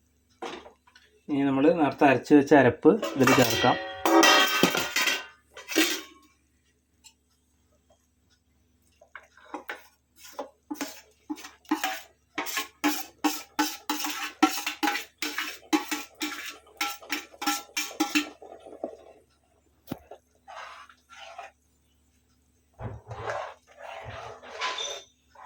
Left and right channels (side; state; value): both; identical; correlation 1.00